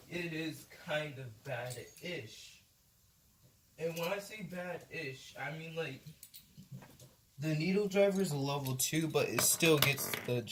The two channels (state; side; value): identical; both; correlation 1.00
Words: is kind of bad-ish. And when I say bad-ish, I mean like, the needle driver is a level 2, but it still gets the